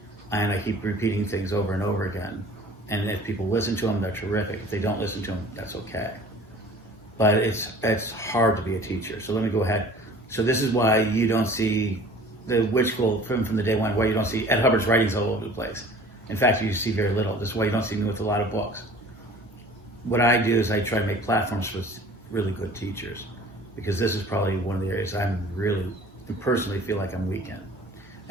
And I keep repeating things over and over again. And if people listen to them, they're terrific. If they don't listen to them, that's okay. But it's hard to be a teacher. So let me go ahead. So this is why you don't see the Witch School from the day one, why you don't see Ed Hubbard's writings all over the place. In fact, you see very little. This is why you don't see me with a lot of books. What I do is I try to make platforms for really good teachers, because this is probably one of the areas I'm really, personally feel like I'm weak in.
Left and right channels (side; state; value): both; normal; correlation 0.47